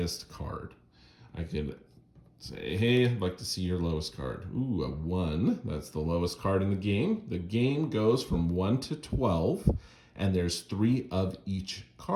card. I can say, hey, I'd like to see your lowest card. Ooh, a 1. That's the lowest card in the game. The game goes from 1 to 12, and there's 3 of each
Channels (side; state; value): both; identical; correlation 1.00